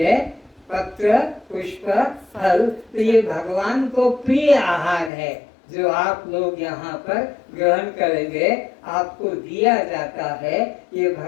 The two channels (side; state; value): right; drops out; at 5.1 s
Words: पत्र पुष्प फल, तो ये भगवान को प्रिय आहार है जो आप लोग यहाँ पर ग्रहण करेंगे, आपको दिया जाता है, ये